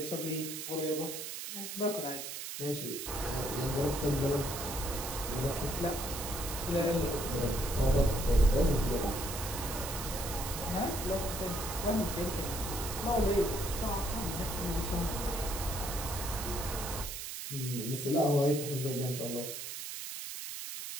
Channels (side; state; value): right; noise; hiss, 6 dB below the sound